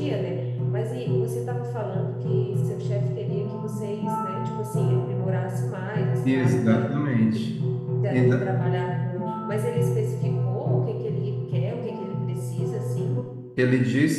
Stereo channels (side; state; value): both; identical; correlation 1.00